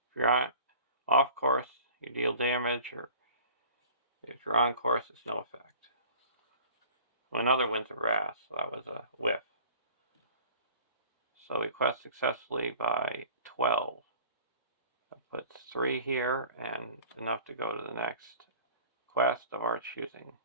If you're off course, you deal damage, or if you're on course, it's no effect. Well, another Winds of Wrath, so that was a whiff. So we quest successfully by 12. That puts 3 here and enough to go to the next quest of our choosing.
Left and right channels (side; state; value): both; inverted; correlation -0.45